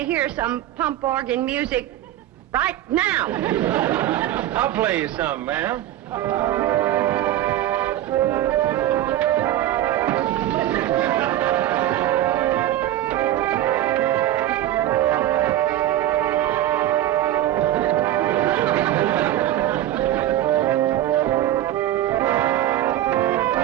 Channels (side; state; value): left; quieter; 13.3 dB